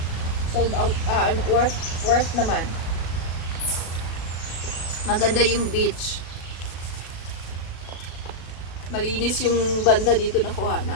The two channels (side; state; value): right; late; 37 ms